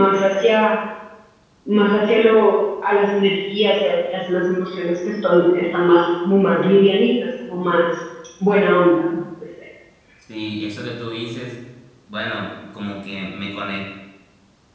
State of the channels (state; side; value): identical; both; correlation 1.00